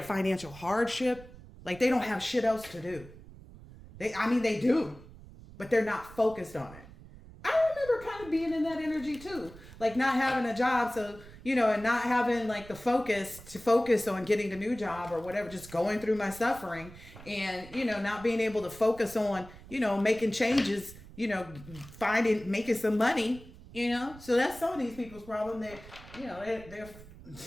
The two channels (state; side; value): noise; right; rumble, 18 dB below the sound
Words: financial hardship. Like they don't have shit else to do. They do, but they're not focused on it. I remember kind of being in that energy too. Like not having a job. So, and not having like the focus on getting the new job or whatever, just going through my suffering and, not being able to focus on, making changes, making some money, so that's some of these people's problem. They're